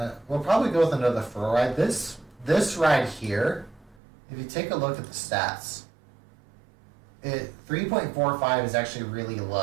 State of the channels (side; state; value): left; drops out; at 4.0 s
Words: we'll probably go with another fur ride. This ride here, if you take a look at the stats, 3.45 is actually really